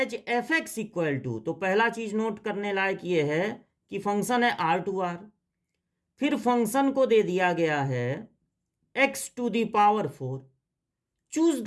f x equal to, तो पहला चीज नोट करने लायक ये है कि फंक्शन है आर टू आर, फिर फंक्शन को दे दिया गया है x to the power 4। Choose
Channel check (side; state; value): both; identical; correlation 1.00